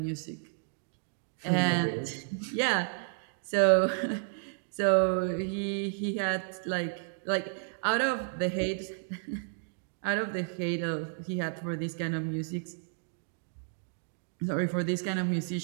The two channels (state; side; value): silent; left; digital silence